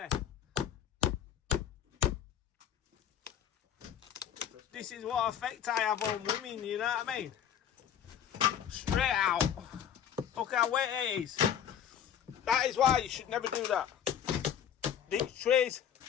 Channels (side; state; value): right; quieter; 9.2 dB